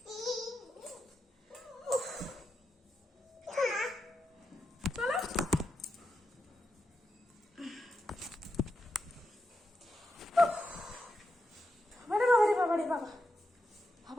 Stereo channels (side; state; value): both; normal; correlation 0.86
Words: চলো বাবারে বাবারে বাবা,